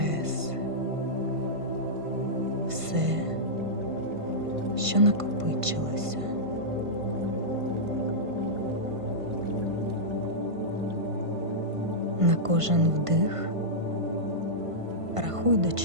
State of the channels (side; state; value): left; late; 1.5 ms